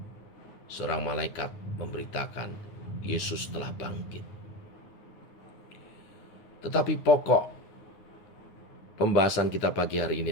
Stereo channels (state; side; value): late; right; 9.6 ms